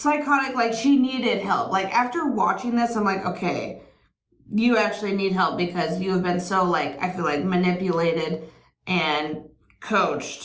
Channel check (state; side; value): identical; both; correlation 1.00